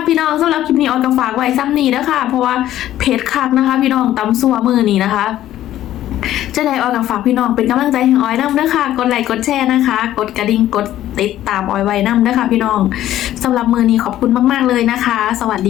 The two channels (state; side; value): quieter; right; 13.0 dB